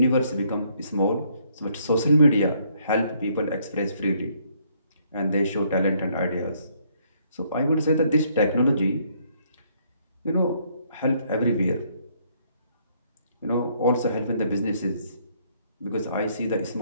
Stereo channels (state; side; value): inverted; both; correlation -0.68